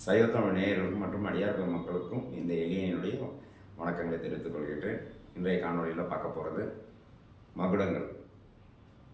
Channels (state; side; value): identical; both; correlation 1.00